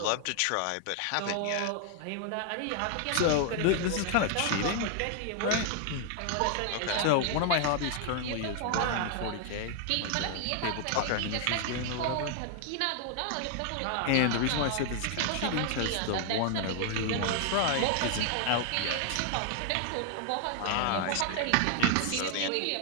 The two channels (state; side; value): different; both; correlation 0.00